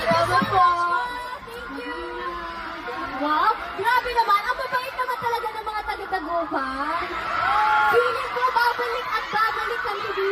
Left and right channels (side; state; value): both; identical; correlation 1.00